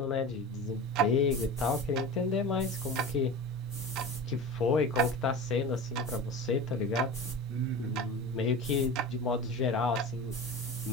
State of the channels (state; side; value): normal; both; correlation 0.31